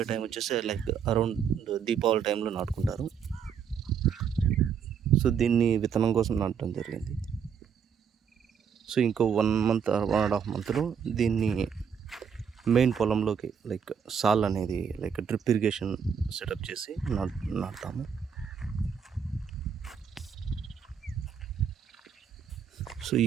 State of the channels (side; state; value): left; quieter; 7.2 dB